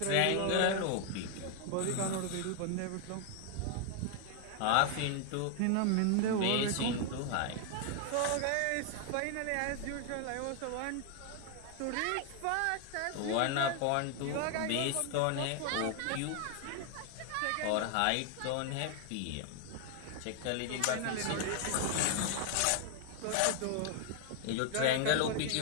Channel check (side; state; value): both; different; correlation 0.00